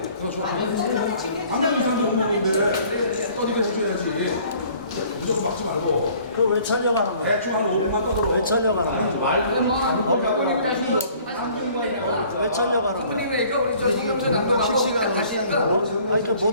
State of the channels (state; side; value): inverted; both; correlation -0.55